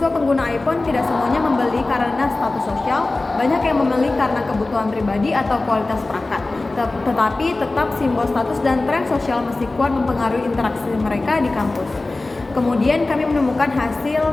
pengguna iPhone tidak semuanya membeli karena status sosial, banyak yang membeli karena kebutuhan pribadi atau kualitas perangkat. Tetapi tetap simbol status dan tren sosial masih kuat mempengaruhi interaksi mereka di kampus. Kemudian kami menemukan hasil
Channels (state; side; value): quieter; right; 3.1 dB